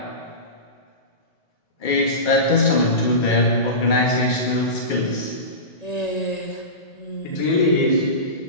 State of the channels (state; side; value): late; right; 2.3 ms